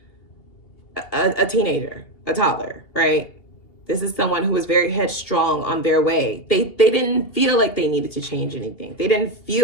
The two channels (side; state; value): right; late; 2.8 ms